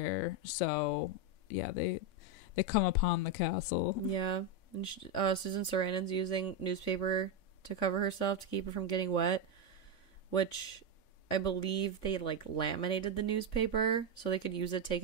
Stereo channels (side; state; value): right; late; 3.5 ms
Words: so yeah, they come upon the castle. Yeah, and Susan Sarandon's using newspaper to cover herself to keep her from getting wet, which I believe they like laminated the newspaper so they could use it take